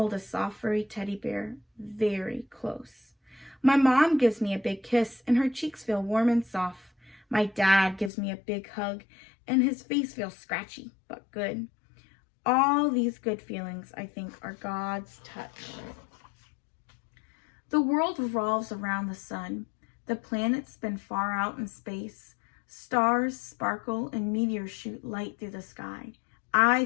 a soft furry teddy bear very close. My mom gives me a big kiss and her cheeks feel warm and soft. My dad gives me a big hug and his face feels scratchy but good. All these good feelings, I think, are God's touch. The world revolves around the sun. The planets spin far out in space. Stars sparkle and meteors shoot light through the sky. I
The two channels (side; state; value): right; drops out; at 8.1 s